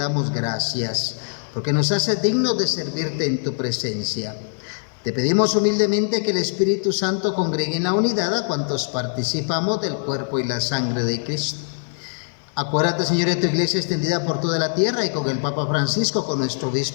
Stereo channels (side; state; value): right; silent; 64 dB below the other